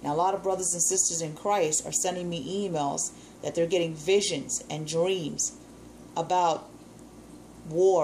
Now, a lot of brothers and sisters in Christ are sending me emails that they're getting visions and dreams about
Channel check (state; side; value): identical; both; correlation 1.00